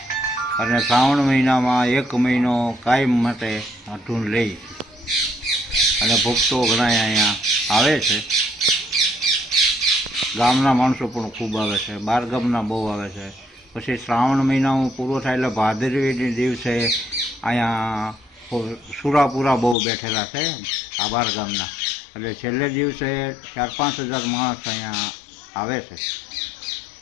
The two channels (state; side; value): drops out; right; at 19.8 s